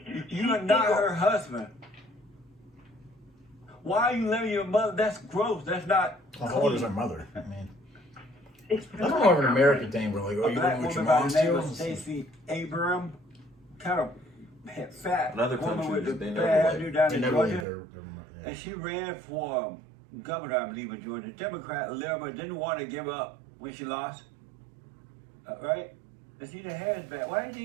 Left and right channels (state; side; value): drops out; left; at 17.7 s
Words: You are not her husband. Why are you living with your mother? That's gross. That's not. How old is her mother? I mean, It's that's more of an American thing, bro. Like, oh, A you black living with your woman by mom the name of still? Stacey Abram, kind of fat In other woman with the countries, they bad never hairdo like- down They in never Georgia. leave their And she ran for governor, I believe, in Georgia. Democrat, liberal, didn't want to give up when she lost. Right? And she the hair's bad. Why didn't